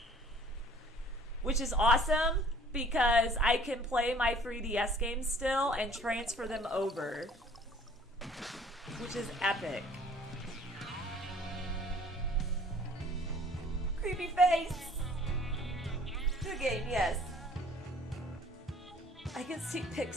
which is awesome because I can play my 3DS games still and transfer them over, which is epic. Creepy face. Good game, yes. I can see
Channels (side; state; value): both; normal; correlation 0.53